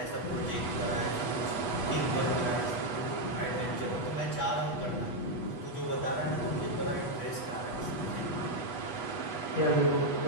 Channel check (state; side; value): late; right; 8.2 ms